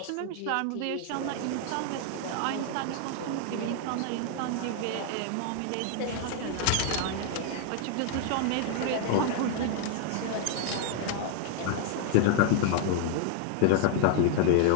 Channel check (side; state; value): both; different; correlation 0.00